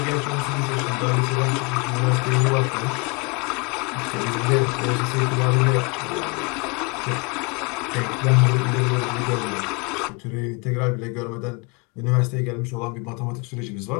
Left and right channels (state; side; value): quieter; right; 30.4 dB